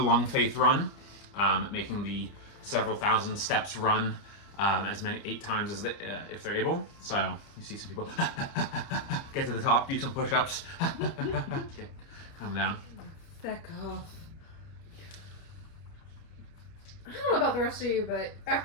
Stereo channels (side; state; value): right; late; 29 ms